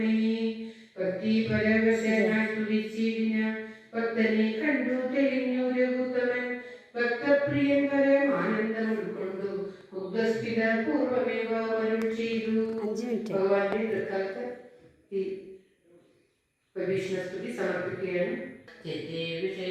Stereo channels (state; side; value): identical; both; correlation 1.00